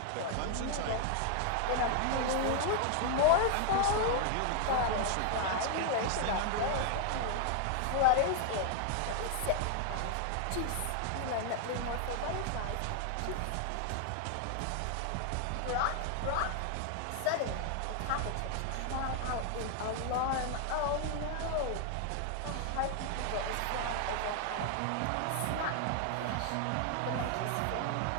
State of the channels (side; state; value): both; different; correlation 0.00